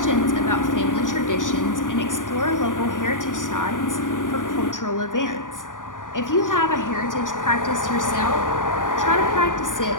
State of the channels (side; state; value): right; late; 0.88 ms